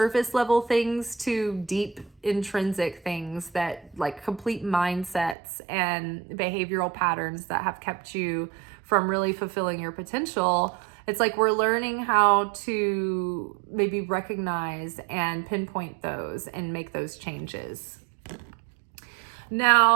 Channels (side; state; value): left; drops out; at 5.4 s